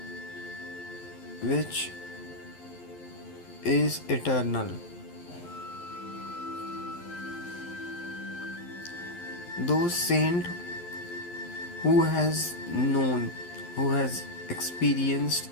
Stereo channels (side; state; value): right; late; 11 ms